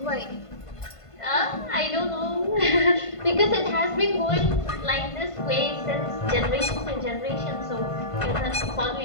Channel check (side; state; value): right; late; 1.5 ms